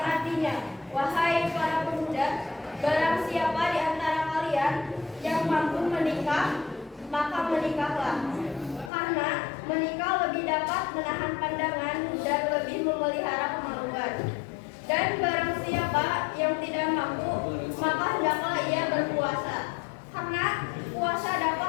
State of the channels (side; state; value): right; drops out; at 8.9 s